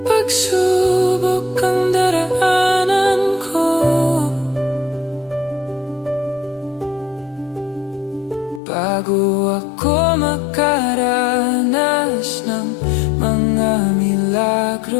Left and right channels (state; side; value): drops out; right; at 8.6 s